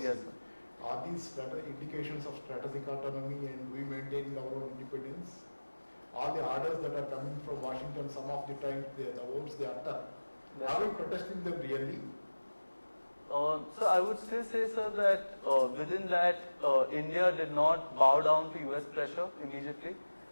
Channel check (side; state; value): both; inverted; correlation -1.00